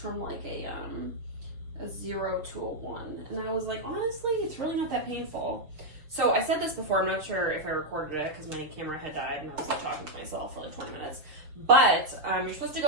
like a 0 to a 1? And I was like, honestly, it's really not that painful. So I said this before, I'm not sure if I recorded it because my camera had died and I was like talking to myself for like 20 minutes. But you're supposed to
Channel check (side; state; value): left; late; 6.7 ms